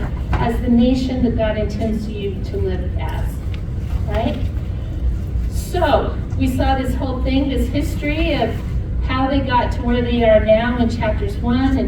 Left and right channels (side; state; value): both; identical; correlation 1.00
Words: as the nation that God intends you to live as, right? So, we saw this whole thing, this history of how they got to where they are now in chapters 1